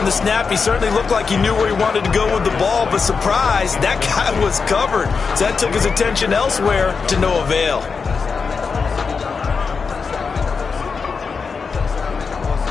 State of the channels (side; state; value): right; quieter; 5.2 dB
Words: the snap, he certainly looked like he knew where he wanted to go with the ball, but surprise, that guy was covered. So that took his attention elsewhere to no avail.